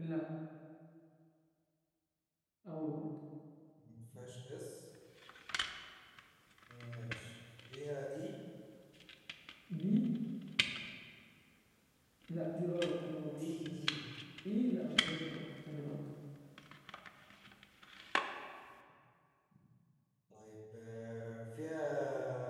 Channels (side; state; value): both; identical; correlation 1.00